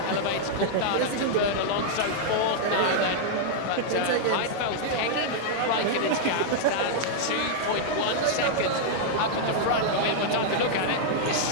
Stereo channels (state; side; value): different; both; correlation -0.01